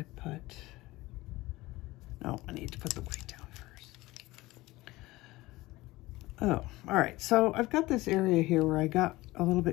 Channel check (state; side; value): quieter; right; 19.3 dB